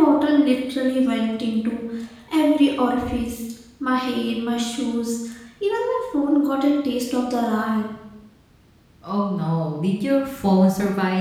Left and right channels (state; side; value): identical; both; correlation 1.00